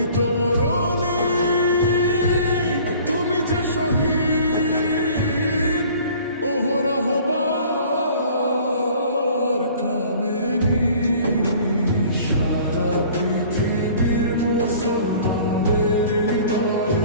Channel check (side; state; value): both; inverted; correlation -0.49